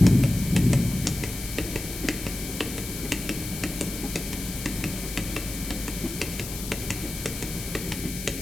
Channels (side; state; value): left; noise; hiss, 9 dB below the sound